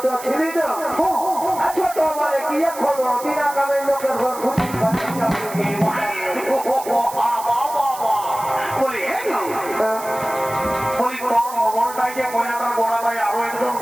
ছিলি না ছোট মানে কি এখন বিনা কামের লোকের ঘর ঘুরছি বলি হ্যাঁ গো বলি তোর মোবাইলটাই যে কয়নাটার গোড়া ভাই আরো একজন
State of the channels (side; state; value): right; noise; hiss, 14 dB below the sound